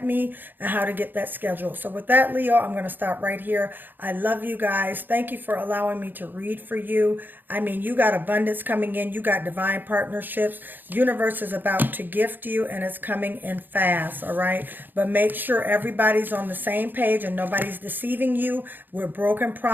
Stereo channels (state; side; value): late; left; 0.091 ms